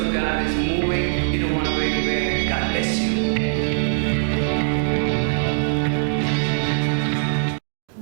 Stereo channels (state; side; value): silent; left; digital silence